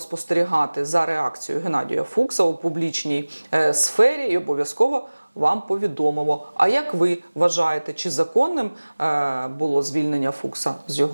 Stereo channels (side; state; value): both; inverted; correlation -1.00